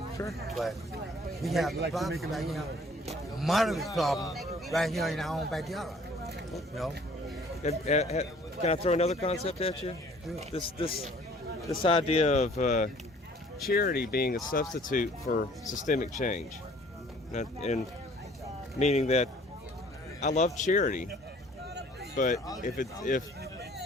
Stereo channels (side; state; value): both; normal; correlation 0.55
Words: Sure. But we have the problem right here, moderate problem right here in our own backyard. You know? Can I throw another concept at you? This idea of charity being a substitute for systemic change, and meaning that I love charity, but if